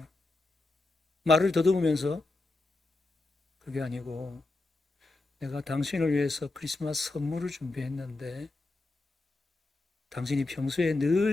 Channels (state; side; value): quieter; right; 3.1 dB